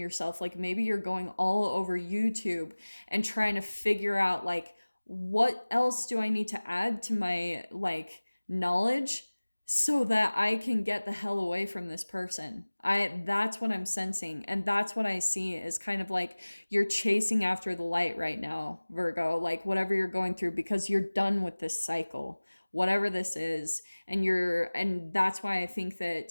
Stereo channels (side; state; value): both; inverted; correlation -1.00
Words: Like maybe you're going all over YouTube and trying to figure out like, what else do I need to add to my like knowledge so that I can get the hell away from this person. That's what I'm sensing, and that's what I see is kind of like you're chasing after the light right now, Virgo, like whatever you're going through, because you're done with this cycle, whatever this is. And that's why I think